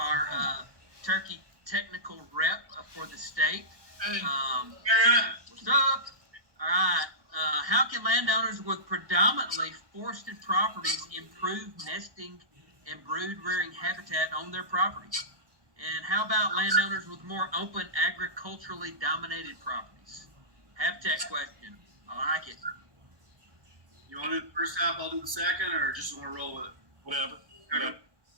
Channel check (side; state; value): left; late; 1.2 ms